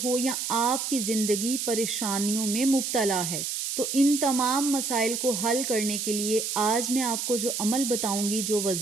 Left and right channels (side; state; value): right; noise; hiss, 3 dB below the sound